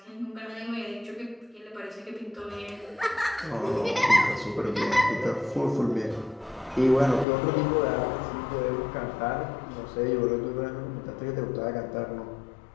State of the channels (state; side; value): drops out; right; at 7.2 s